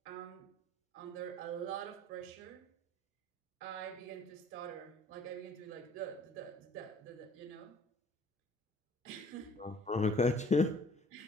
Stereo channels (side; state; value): both; normal; correlation 0.54